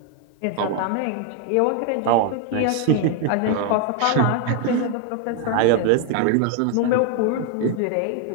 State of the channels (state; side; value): different; both; correlation 0.01